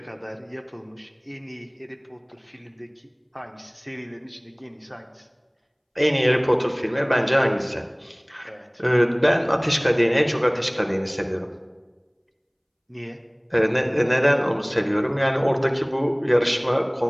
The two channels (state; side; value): identical; both; correlation 1.00